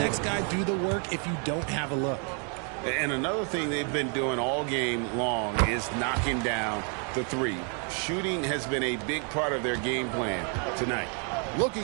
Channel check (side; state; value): left; quieter; 39.6 dB